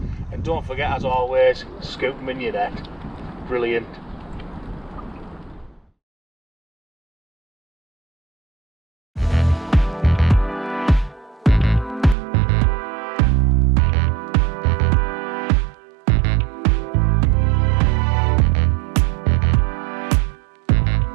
and don't forget, as always, scoop them in your net. Brilliant.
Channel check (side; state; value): left; drops out; at 12.2 s